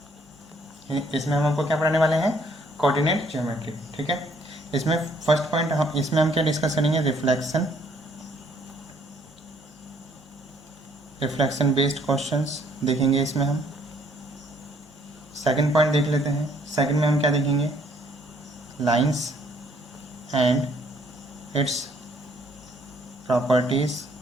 इसमें हम आपको क्या पढ़ाने वाले हैं, कोऑर्डिनेट ज्योमेट्री, ठीक है। इसमें फर्स्ट पॉइंट हम क्या डिस्कस करेंगे, रिफ्लेक्शन बेस्ड क्वेश्चंस देखेंगे इसमें हम। सेकंड पॉइंट देख लेते हैं, सेकंड में हम क्या देखेंगे, लाइंस एंड इट्स प्रॉपर्टीज।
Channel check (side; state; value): both; normal; correlation 0.64